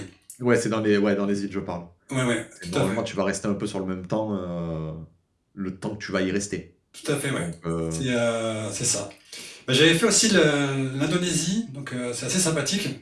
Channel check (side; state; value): both; identical; correlation 1.00